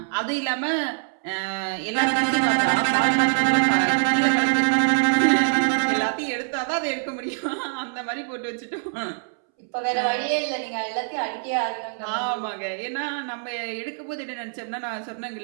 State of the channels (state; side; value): silent; left; 62 dB below the other